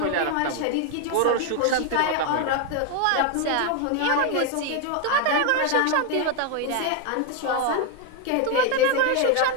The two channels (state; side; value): different; both; correlation 0.01